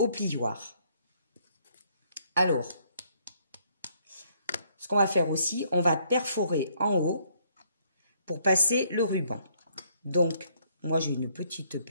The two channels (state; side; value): inverted; both; correlation -0.68